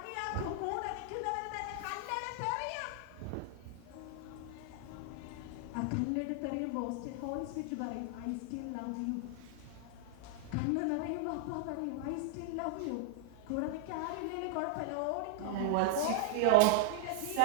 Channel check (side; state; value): both; different; correlation -0.01